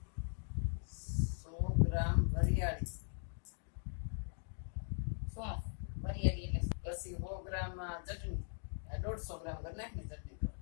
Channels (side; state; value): right; silent; digital silence